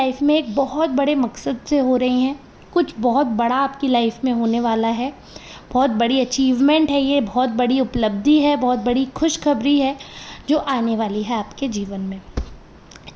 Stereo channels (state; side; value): identical; both; correlation 1.00